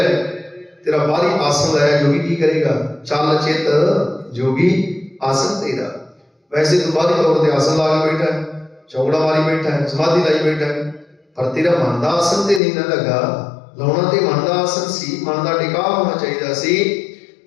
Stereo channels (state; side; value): drops out; right; at 12.6 s